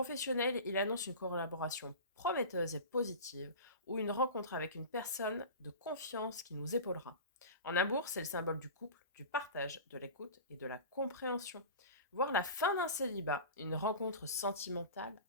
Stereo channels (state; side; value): inverted; both; correlation -0.33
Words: il annonce une collaboration prometteuse et positive ou une rencontre avec une personne de confiance qui nous épaulera. En amour, c'est le symbole du couple, du partage, de l'écoute et de la compréhension. Voir la fin d'un célibat, une rencontre sentimentale